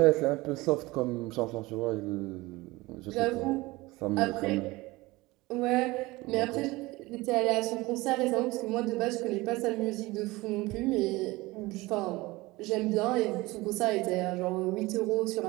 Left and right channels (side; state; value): left; quieter; 21.1 dB